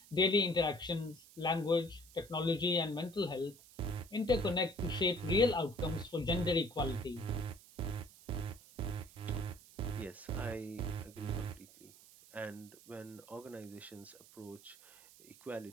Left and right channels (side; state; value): right; noise; hiss, 22 dB below the sound